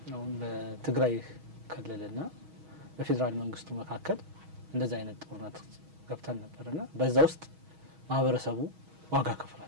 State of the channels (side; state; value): left; late; 6.3 ms